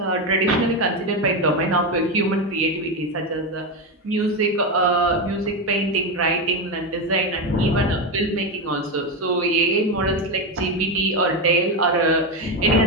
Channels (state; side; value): normal; both; correlation 0.12